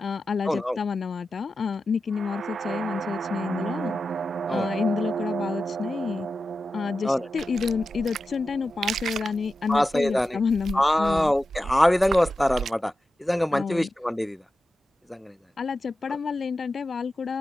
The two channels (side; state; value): both; normal; correlation 0.91